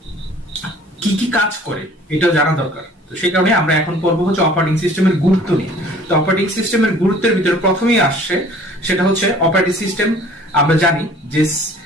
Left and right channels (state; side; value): normal; both; correlation 0.51